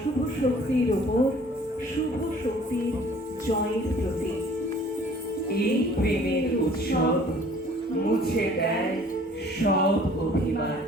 শক্তির ওপর শুভ শক্তির জয়ের প্রতীক। এই প্রেমের উৎসব মুছে দেয় সব অভিমান,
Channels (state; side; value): normal; both; correlation 0.53